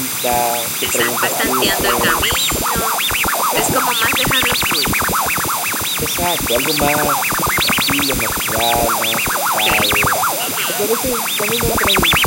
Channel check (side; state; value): both; identical; correlation 1.00